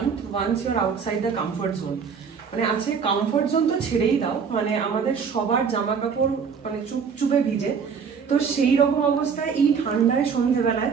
once you are outside the comfort zone. মানে আজকে কমফর্ট জোন তো ছেড়েই দাও, মানে আমাদের সবার জামা কাপড় মানে চুপচুপে ভিজে। তো সেই রকম অবস্থায় এই ঠান্ডায় সন্ধ্যেবেলায়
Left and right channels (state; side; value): quieter; left; 6.2 dB